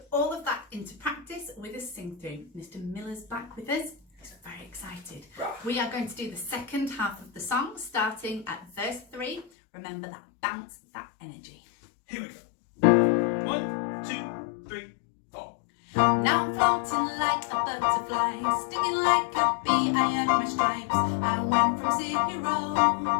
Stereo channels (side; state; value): right; drops out; at 9.5 s